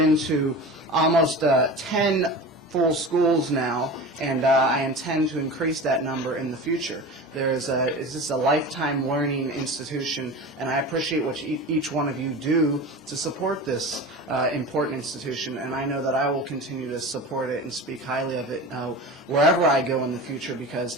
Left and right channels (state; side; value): normal; both; correlation 0.32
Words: to almost 10 full schools now, and I intend to increase that number in the future. It's just a lifetime learning institution, and I appreciate what each one of you do to support this important institution, and I know that I will continue to support it and speak highly of it wherever I go in the future,